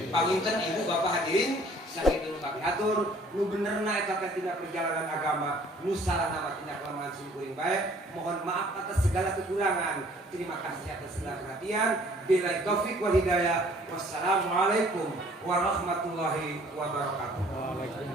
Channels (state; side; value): normal; both; correlation 0.56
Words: Panginten ibu bapak hadirin sakit dulu kami atur nu benerna eta tina perjalanan agama nu salahna mah tina kelemahan sing baik. Mohon maaf atas segala kekurangan. Terima kasih atas segala perhatian. Billahi taufik wal hidayah. Wassalamualaikum warahmatullahi wabarakatuh.